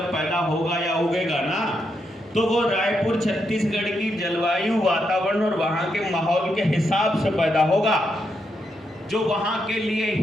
पैदा होगा या उगेगा ना, तो वो रायपुर छत्तीसगढ़ की जलवायु, वातावरण और वहाँ के माहौल के हिसाब से पैदा होगा, जो वहाँ के लिए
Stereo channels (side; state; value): both; normal; correlation 0.81